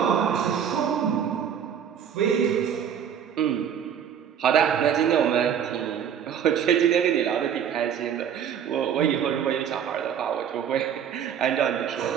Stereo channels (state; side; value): quieter; left; 8.5 dB